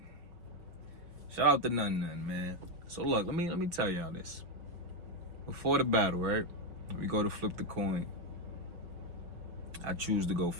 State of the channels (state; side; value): late; left; 5.7 ms